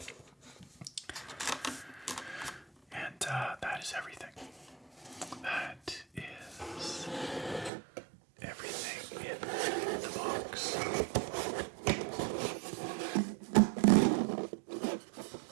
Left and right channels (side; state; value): left; drops out; at 7.7 s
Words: and that is everything. That is everything in the box.